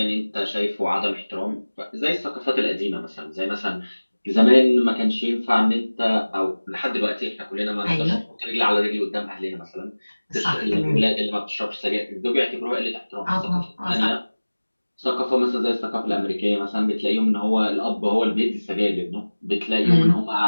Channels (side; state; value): both; inverted; correlation -1.00